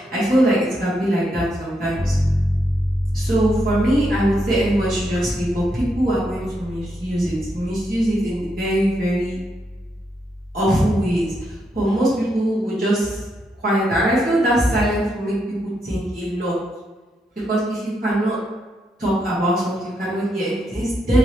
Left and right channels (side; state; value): both; normal; correlation 0.80